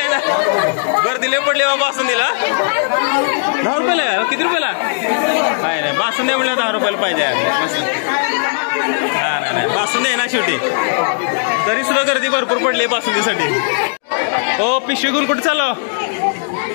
ना. गर्दीले पडली बाबा बासुंदीला. 10 रुपयाला? किती रुपयाला? नाही नाही, बासुंदी म्हणलं 10 रुपयाला पाहिजे. हा नाही नाही, बासुंदी आहे ना शेवटी. तरी सुद्धा गर्दी भरपूर पडली बासुंदीसाठी. हो पिशवी घेऊन कुठे चाललो?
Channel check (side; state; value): right; silent; digital silence